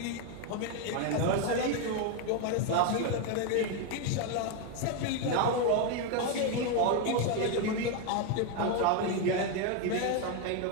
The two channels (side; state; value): both; different; correlation 0.02